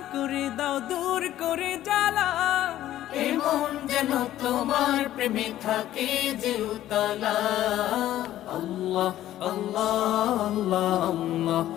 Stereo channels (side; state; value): right; quieter; 13.2 dB